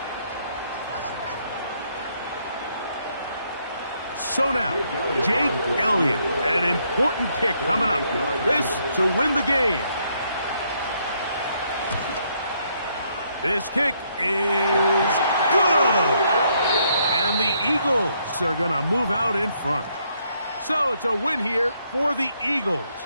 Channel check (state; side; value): inverted; both; correlation -0.72